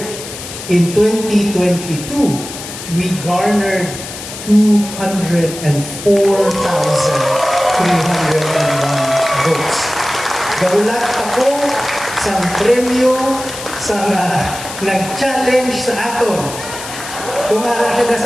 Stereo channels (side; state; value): left; noise; hiss, 11 dB below the sound